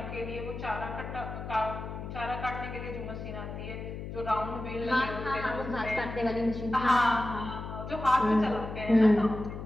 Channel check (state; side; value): noise; left; hum, 8 dB below the sound